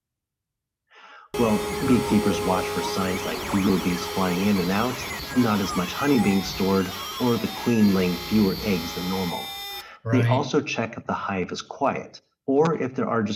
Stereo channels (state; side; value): identical; both; correlation 1.00